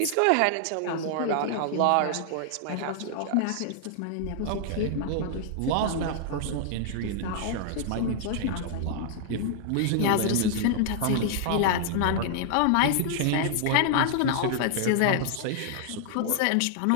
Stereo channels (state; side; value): different; both; correlation -0.01